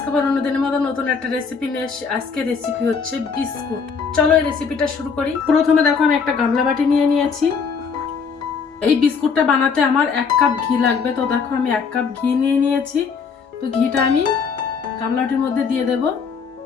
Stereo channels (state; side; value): quieter; right; 5.7 dB